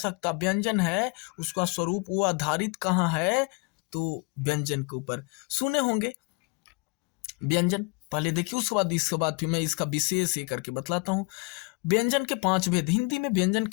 व्यंजन है, उसका स्वरूप वो आधारित कहाँ है, तो व्यंजन के ऊपर। सुने होंगे व्यंजन, पहले देखिए, उसके बाद इसके बाद फिर मैं इसका विशेष ये करके बतलाता हूँ। व्यंजन के 5 भेद, हिंदी में व्यंजन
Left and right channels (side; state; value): right; quieter; 29.8 dB